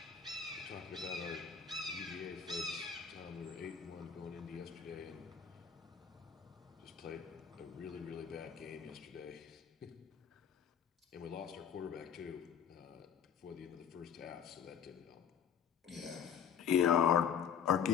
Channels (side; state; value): right; quieter; 7.8 dB